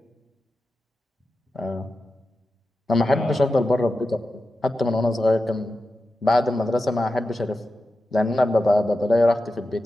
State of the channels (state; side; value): normal; both; correlation 0.92